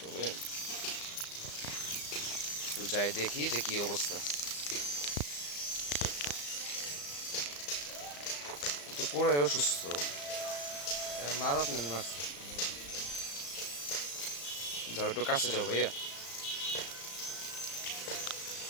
তবে একটু যাই দেখি যে কি অবস্থা। তো পুরাই অসুস্থ। মাদাত মানে মারছে। যাও একটু কাছে যাও ভাইয়া।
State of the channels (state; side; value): late; right; 35 ms